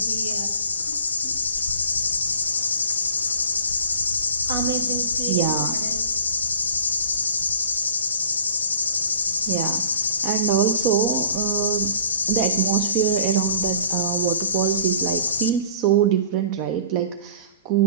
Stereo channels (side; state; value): both; inverted; correlation -0.48